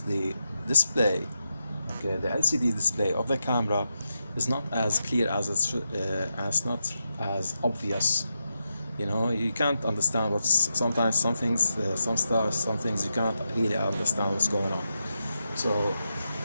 the display. Okay, the LCD display of the camera is not as clear as it should, as not as obvious. You know, you can't understand what's sometimes some things, some stars, some things you can't really understand what's going on. So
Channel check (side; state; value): both; inverted; correlation -0.87